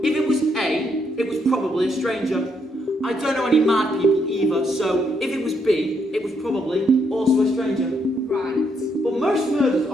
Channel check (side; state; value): both; normal; correlation 0.75